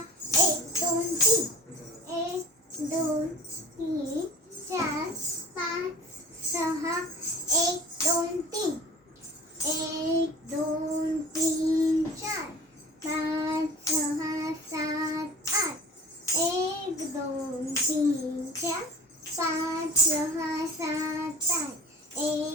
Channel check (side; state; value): both; normal; correlation 0.39